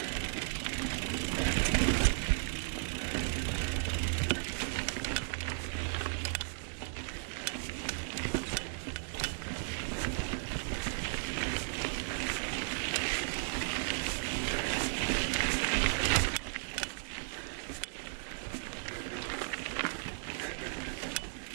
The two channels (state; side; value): silent; left; 54 dB below the other